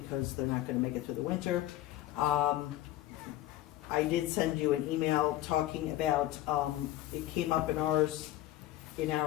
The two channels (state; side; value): quieter; right; 14.8 dB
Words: they're not gonna make it through the winter. I did send you an email talking about, it came up in our